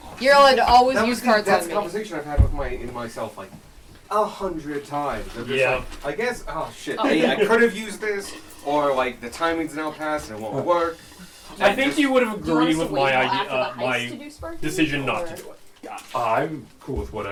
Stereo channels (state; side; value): identical; both; correlation 1.00